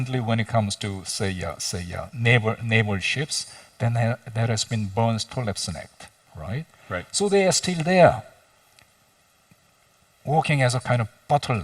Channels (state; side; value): identical; both; correlation 1.00